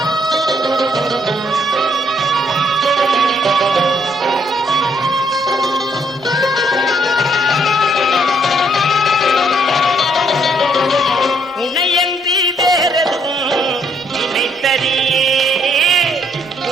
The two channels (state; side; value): normal; both; correlation 0.70